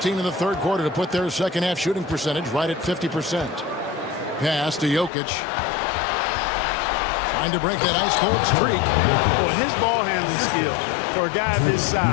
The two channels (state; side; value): drops out; right; at 5.1 s